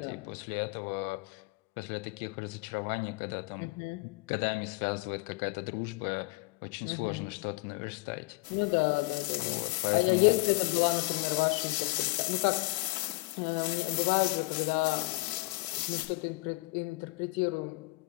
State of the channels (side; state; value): right; quieter; 23.4 dB